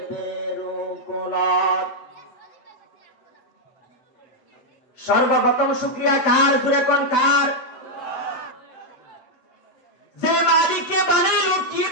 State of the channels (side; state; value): right; late; 8.1 ms